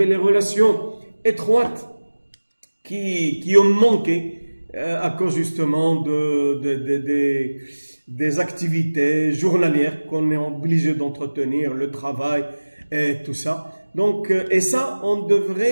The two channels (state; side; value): inverted; both; correlation -1.00